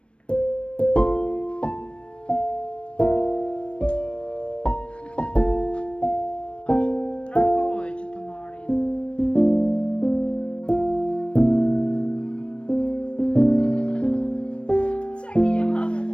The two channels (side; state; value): right; late; 0.059 ms